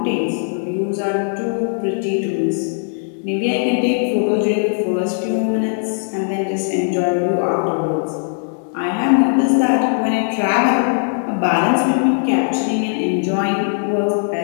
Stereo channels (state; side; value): silent; right; digital silence